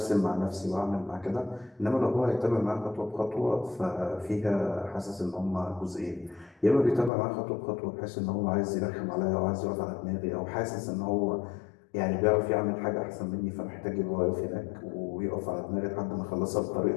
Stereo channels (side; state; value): right; drops out; at 7.1 s